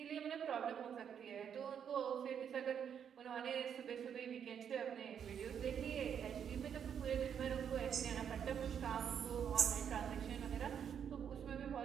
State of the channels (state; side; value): quieter; left; 8.1 dB